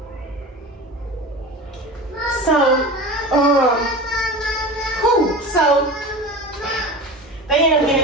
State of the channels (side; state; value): both; normal; correlation 0.31